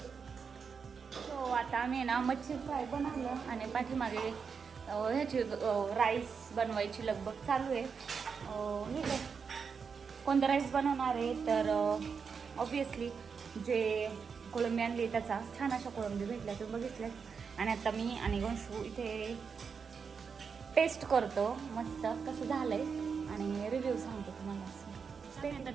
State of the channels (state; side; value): quieter; left; 5.9 dB